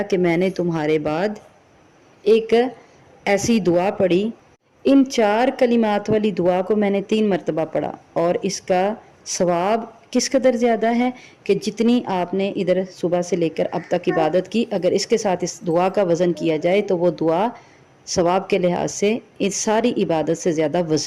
कि मैंने तुम्हारे बाद एक ऐसी दुआ पढ़ी, इन 4 कलिमात वाली दुआ को मैंने 3 मरतबा पढ़ा और इसका सवाब किस कदर ज़्यादा है कि जितनी आपने इधर सुबह से लेकर अब तक इबादत की, अगर इसके साथ इस दुआ का वज़न किया जाए तो वो दुआ सवाब के लिहाज से इस सारी इबादत से ज़्यादा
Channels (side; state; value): both; identical; correlation 1.00